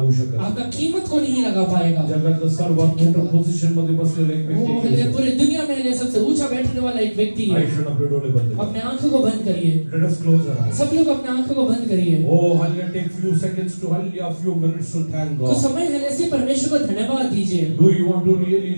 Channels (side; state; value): both; inverted; correlation -1.00